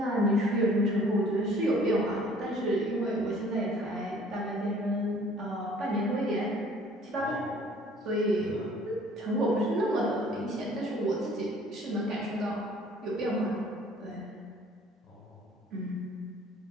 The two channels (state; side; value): normal; both; correlation 0.54